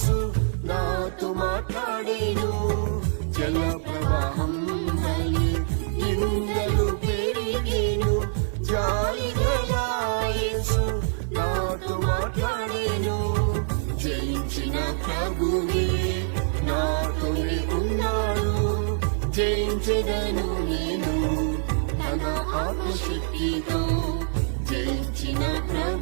నాతో మాట్లాడేను జల ప్రవాహం వలె నిందలు పెరిగేను జాలి గల యేసు నాతో మాట్లాడేను జయించిన ప్రభువే నా జయించెదను నేను తన ఆత్మశక్తితో. జయించిన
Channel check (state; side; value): silent; left; digital silence